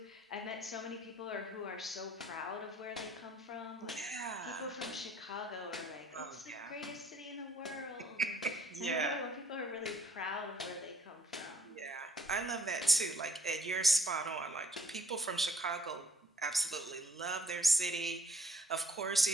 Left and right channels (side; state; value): both; normal; correlation 0.59